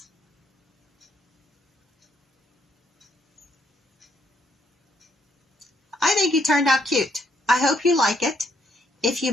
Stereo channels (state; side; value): normal; both; correlation 0.72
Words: I think he turned out cute. I hope you like it. If you